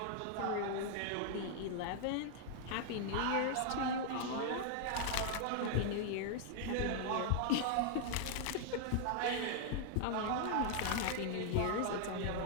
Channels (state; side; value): different; both; correlation -0.01